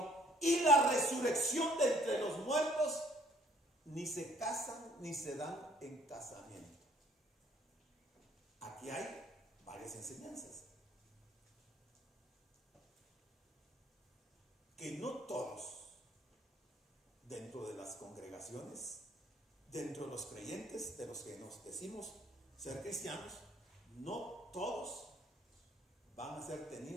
y la resurrección de entre los muertos, ni se casan ni se dan en casamiento. Aquí hay varias enseñanzas. Que no todos, dentro de las congregaciones, dentro de los creyentes, de los que nos decimos ser cristianos, no todos van a ser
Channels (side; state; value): both; normal; correlation 0.59